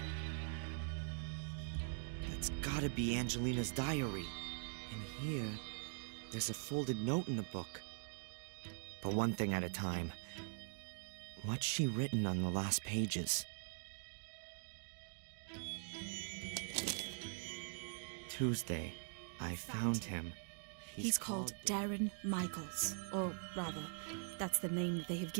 That's gotta be Angelina's diary. And here, there's a folded note in the book. But one thing at a time. What's she written on the last pages? Tuesday, I found him. He's called Darren Michaels. Or rather, that's the name that they have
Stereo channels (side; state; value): left; silent; digital silence